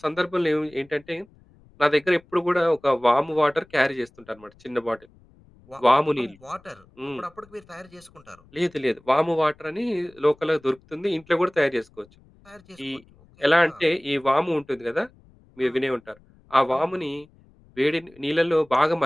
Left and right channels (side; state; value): left; noise; rumble, 28 dB below the sound